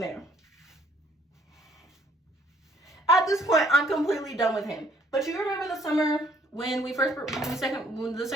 At this point, I'm completely done with him. But you remember the summer when the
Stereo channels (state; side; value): normal; both; correlation 0.63